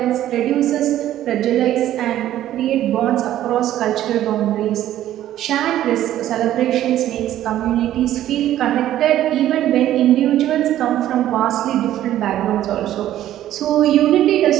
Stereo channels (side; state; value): left; quieter; 12.7 dB